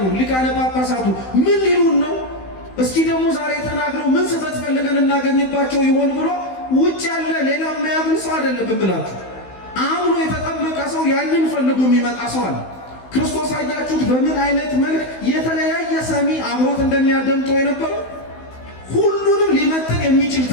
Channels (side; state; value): right; late; 16 ms